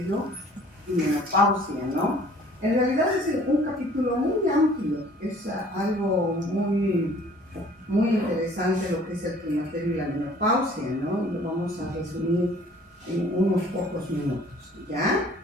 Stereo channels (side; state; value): both; normal; correlation 0.53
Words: y menopausia, ¿no? En realidad es un capítulo muy amplio, es algo muy interesante lo que es el climaterio y la menopausia, ¿no? Y lo vamos a resumir en unos pocos minutos, ¿ya?